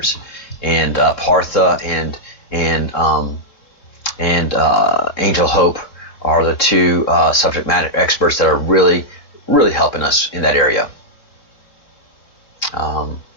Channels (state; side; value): late; right; 3.6 ms